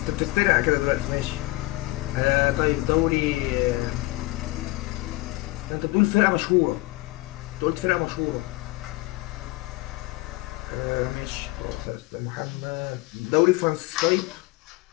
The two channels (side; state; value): right; quieter; 20.9 dB